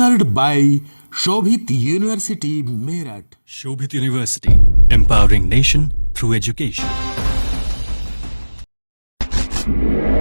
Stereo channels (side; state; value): both; inverted; correlation -1.00